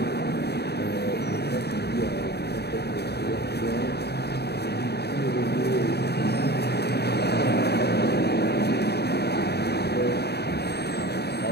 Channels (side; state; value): right; late; 0.48 ms